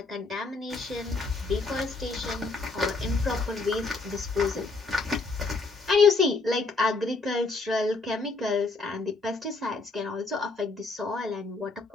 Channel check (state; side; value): quieter; right; 3.8 dB